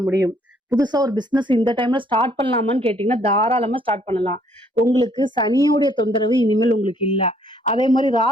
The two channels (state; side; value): normal; both; correlation 0.65